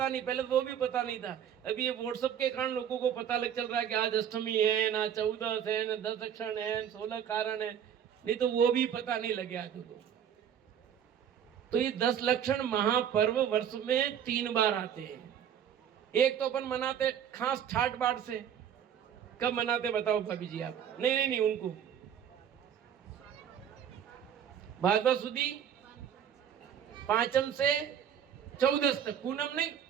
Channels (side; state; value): left; quieter; 9.0 dB